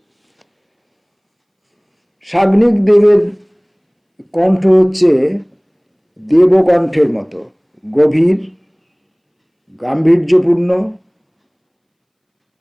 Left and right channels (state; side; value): identical; both; correlation 1.00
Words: সাগ্নিক দেবের কণ্ঠ হচ্ছে দেবকণ্ঠের মতো, গভীর, গাম্ভীর্যপূর্ণ